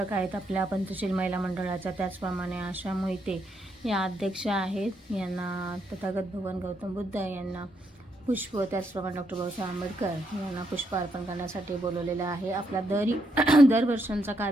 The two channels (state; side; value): normal; both; correlation 0.78